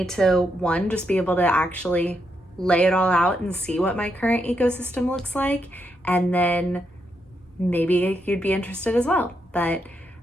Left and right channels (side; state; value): both; normal; correlation 0.81